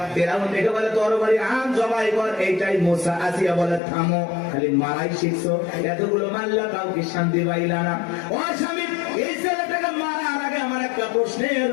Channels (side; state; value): right; drops out; at 3.8 s